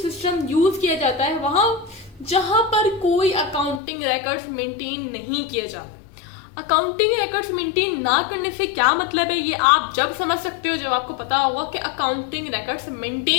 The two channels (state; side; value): drops out; right; at 3.8 s